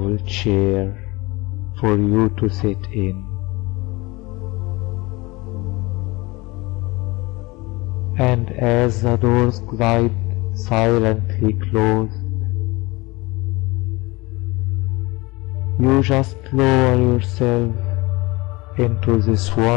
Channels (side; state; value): right; quieter; 23.3 dB